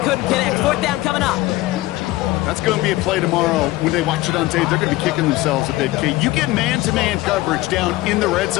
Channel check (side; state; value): right; quieter; 18.3 dB